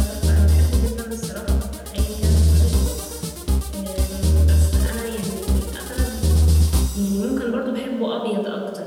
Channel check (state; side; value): identical; both; correlation 1.00